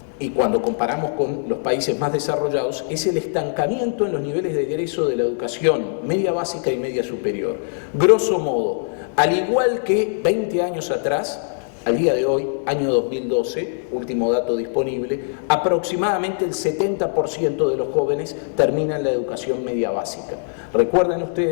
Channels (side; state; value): right; silent; digital silence